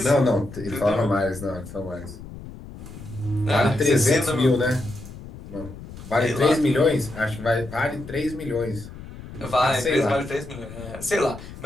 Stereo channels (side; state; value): left; noise; rumble, 14 dB below the sound